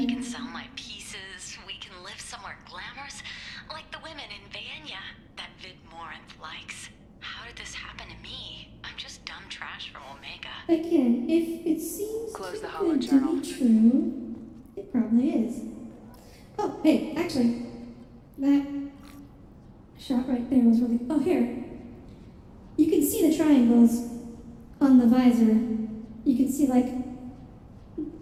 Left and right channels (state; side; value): identical; both; correlation 1.00